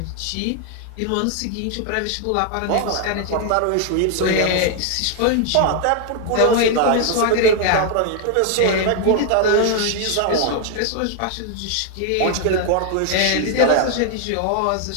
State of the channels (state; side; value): different; both; correlation 0.00